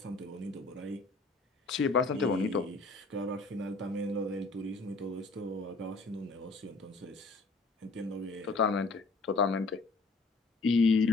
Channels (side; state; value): right; quieter; 3.5 dB